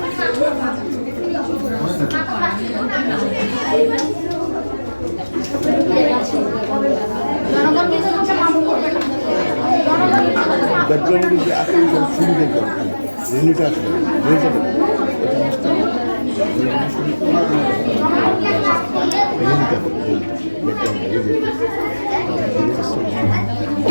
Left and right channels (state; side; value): inverted; both; correlation -1.00